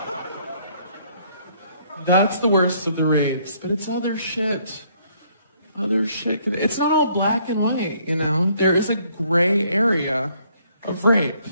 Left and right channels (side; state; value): both; inverted; correlation -0.66